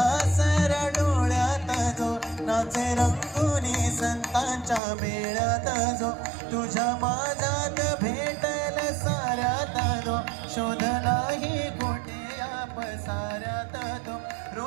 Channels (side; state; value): left; drops out; at 4.8 s